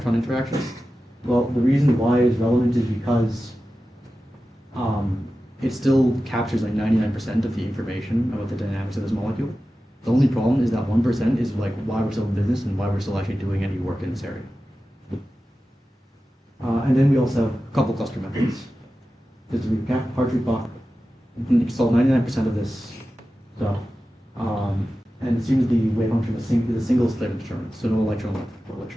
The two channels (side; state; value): both; normal; correlation 0.94